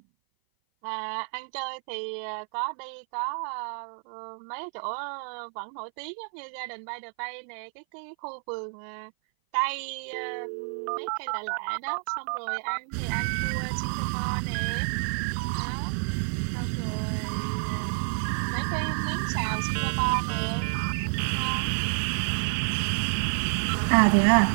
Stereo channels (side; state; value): left; silent; 56 dB below the other